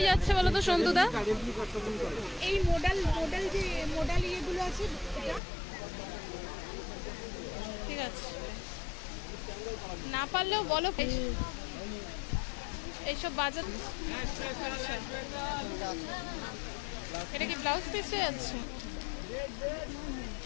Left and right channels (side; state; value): right; drops out; at 5.4 s